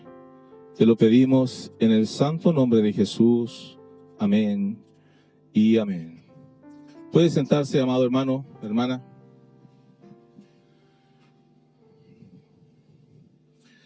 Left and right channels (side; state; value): both; identical; correlation 1.00